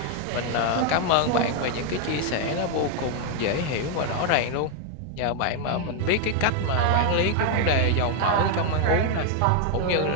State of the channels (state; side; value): different; both; correlation 0.01